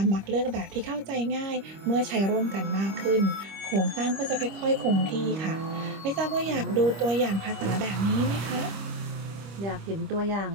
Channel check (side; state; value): left; late; 25 ms